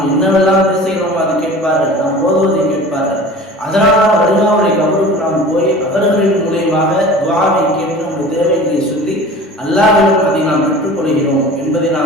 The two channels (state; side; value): normal; both; correlation 0.40